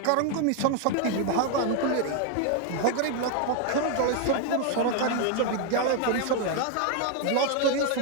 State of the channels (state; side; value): different; both; correlation 0.01